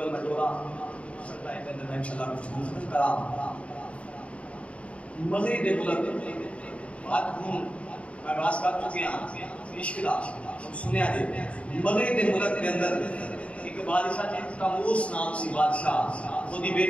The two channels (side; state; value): right; late; 0.063 ms